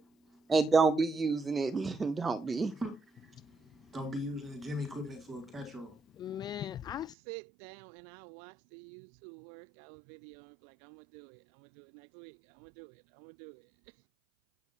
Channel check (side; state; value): left; drops out; at 7.2 s